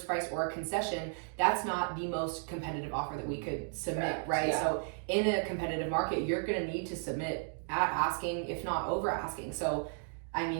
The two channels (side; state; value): left; silent; 55 dB below the other